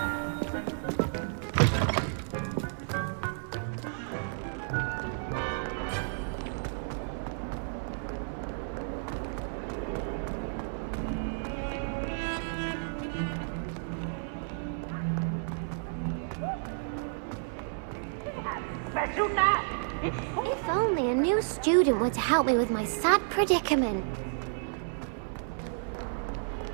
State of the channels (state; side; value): silent; left; 57 dB below the other